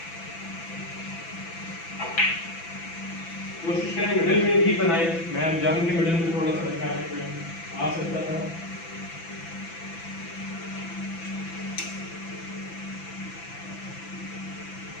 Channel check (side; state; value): right; late; 6.0 ms